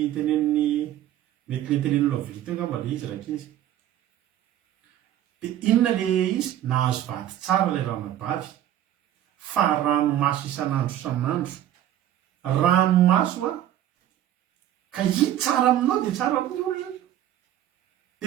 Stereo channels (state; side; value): quieter; left; 12.0 dB